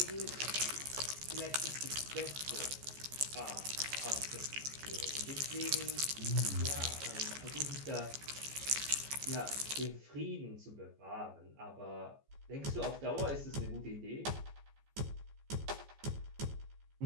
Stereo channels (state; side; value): late; left; 14 ms